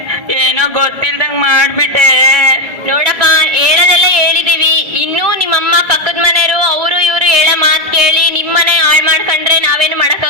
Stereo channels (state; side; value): late; left; 1.7 ms